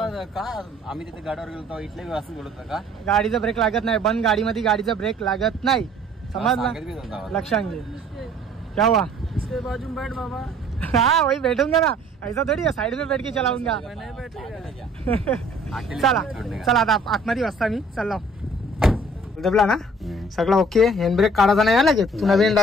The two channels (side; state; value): both; normal; correlation 0.54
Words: का? आम्ही तिथे गाडीवर गेलो तेव्हा इथले असं बोलत का? गाडीचं ब्रेक लागत नाही. बंद गाडीमध्ये गाडीचा ब्रेक लागत नाही. समजला? लक्षात घे. क्या हुआ? इसके बाजू में बैठ बाबा. हाँ वही बैठूंगा ना. ऐसा थोड़ी है साइड में बैठ के चलाऊंगा. नहीं बैठेगा. चला चला आता आतमध्ये वाजता मी चाललो. दबला ना सगळं ओके. हँडब्रेक काढायचा नाही आला की तू नवीन